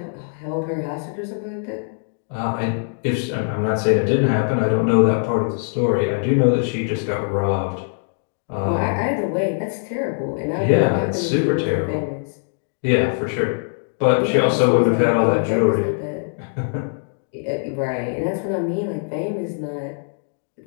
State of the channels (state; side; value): silent; right; digital silence